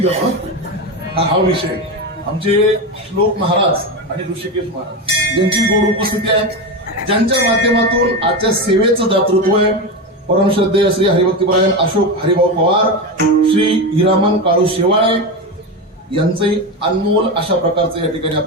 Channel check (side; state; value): both; normal; correlation 0.17